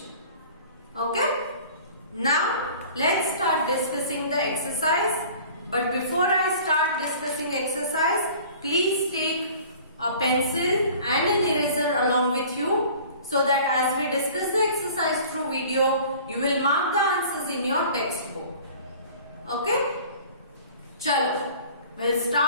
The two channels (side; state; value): both; inverted; correlation -0.46